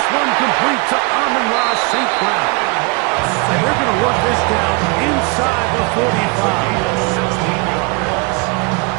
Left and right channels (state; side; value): quieter; left; 29.4 dB